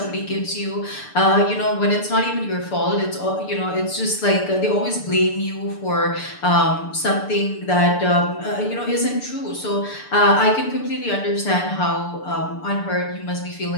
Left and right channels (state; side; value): late; right; 6.8 ms